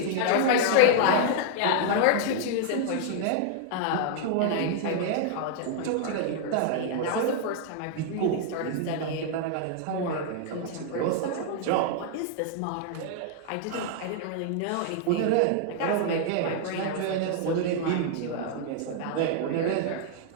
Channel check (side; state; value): both; different; correlation 0.00